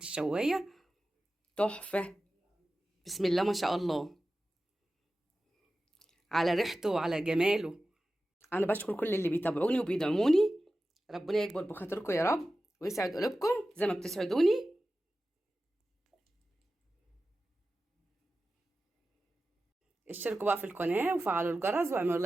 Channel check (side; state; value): both; normal; correlation 0.94